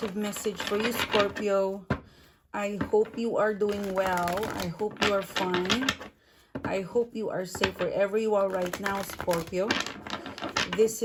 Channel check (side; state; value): both; identical; correlation 1.00